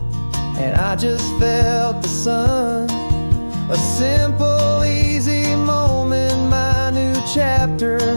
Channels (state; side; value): inverted; both; correlation -1.00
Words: and I just felt the sun. A simple, easy moment, my new chapter